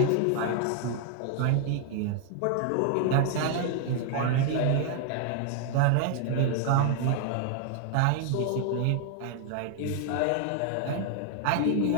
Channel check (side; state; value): both; different; correlation 0.00